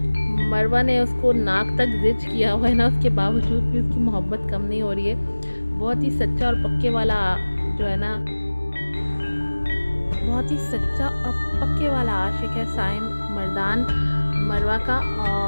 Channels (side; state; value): both; inverted; correlation -1.00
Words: मरवा ने उसको नाक तक जिच किया हुआ है ना, उसके बावजूद भी उसकी मोहब्बत कम नहीं हो रही है। बहुत ही सच्चा और पक्के वाला जो है ना, बहुत ही सच्चा और पक्के वाला आशिक है साइम मर्दान मरवा का।